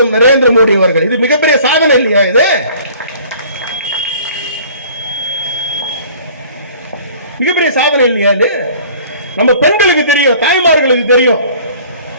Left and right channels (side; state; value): both; inverted; correlation -0.51